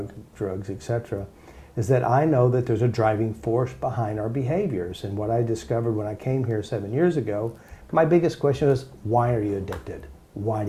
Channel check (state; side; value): identical; both; correlation 1.00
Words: etc., is that I know that there's a driving force behind our behaviors. And what I discovered when I came here 7 years ago, my biggest question was, why are you addicted? Why